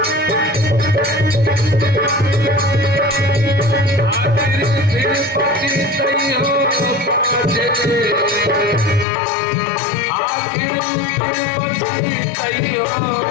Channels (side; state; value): right; drops out; at 9.1 s